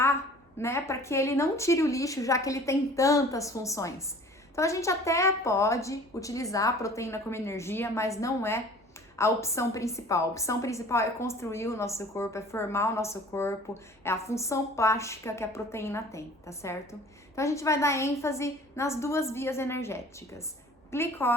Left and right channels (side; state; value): both; normal; correlation 0.47